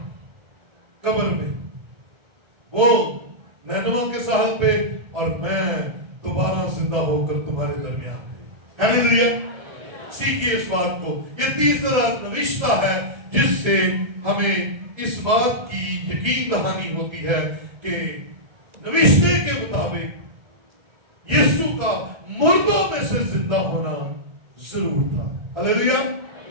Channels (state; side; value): late; left; 1.7 ms